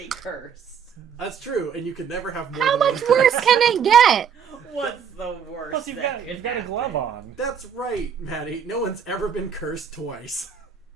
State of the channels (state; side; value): quieter; left; 7.5 dB